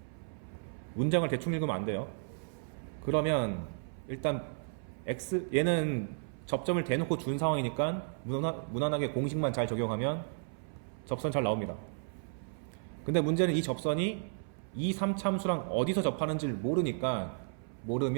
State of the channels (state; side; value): silent; left; 55 dB below the other